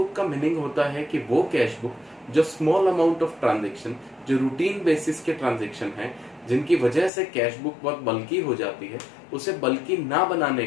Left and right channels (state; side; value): drops out; right; at 7.1 s